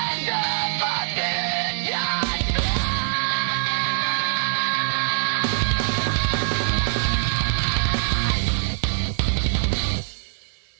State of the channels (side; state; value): left; silent; digital silence